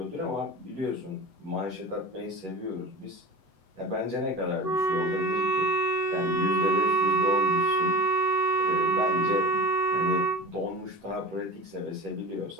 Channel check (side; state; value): left; late; 8.1 ms